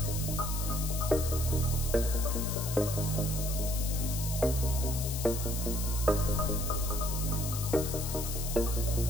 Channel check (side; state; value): left; noise; hiss, 6 dB below the sound